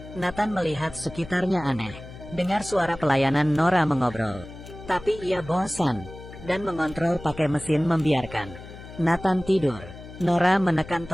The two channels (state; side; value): noise; left; hum, 15 dB below the sound